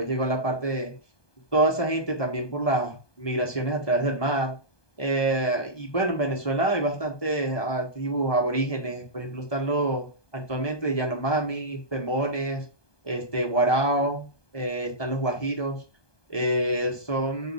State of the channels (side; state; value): right; late; 1.2 ms